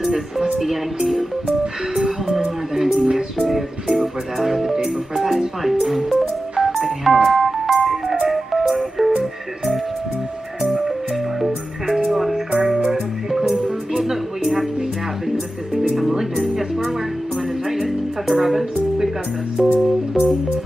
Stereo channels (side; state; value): both; normal; correlation 0.93